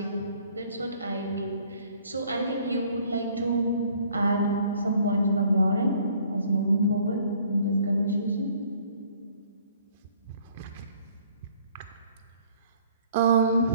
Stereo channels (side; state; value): both; inverted; correlation -0.58